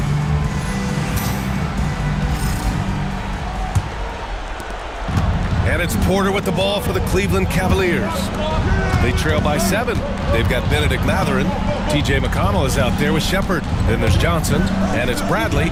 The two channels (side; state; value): both; identical; correlation 1.00